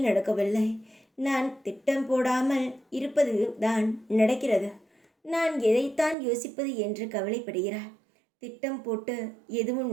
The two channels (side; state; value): left; drops out; at 6.2 s